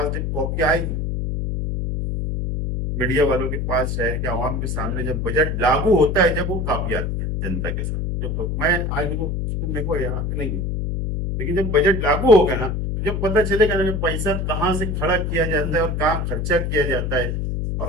जब कॉपी आएगी मीडिया वालों के पास, शहर के आवाम के सामने जब बजट लागू होता है, जब वो कॉपी आती है जनता के सामने, जब मैं आज वो मेरे को याद नहीं है, लेकिन जब बजट लागू होगा ना, जब पता चलेगा ना पैसा कहाँ से खड़ा किया जाता है और कहाँ खर्चा किया जाता है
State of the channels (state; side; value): noise; left; hum, 1 dB below the sound